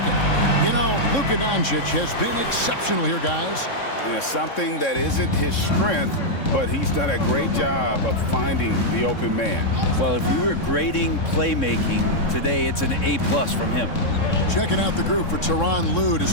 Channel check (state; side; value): late; right; 3.6 ms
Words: You know, Luka Doncic has been exceptional here, guys. Yeah, something that isn't his strength, but he's done a great job of finding the open man. Well, if we were grading playmaking today, it's an A+ from him. Checking out the group for Tyronn Lue to